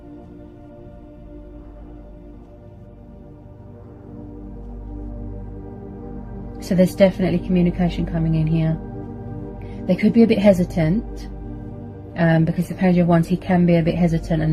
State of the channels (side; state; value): both; identical; correlation 1.00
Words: So there's definitely communication coming in here. They could be a bit hesitant, because the Page of Wands, he can be a bit hesitant